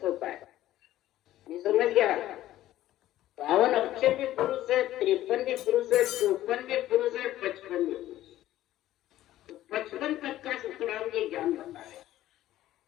होता है। ये समझ गया? 52 अक्षर भी पुरुष है, 53 भी पुरुष है, 54 भी पुरुष है, 55 भी पुरुष। तो 55 तक का सुखराम ये ज्ञान बता है।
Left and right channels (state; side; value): quieter; right; 14.0 dB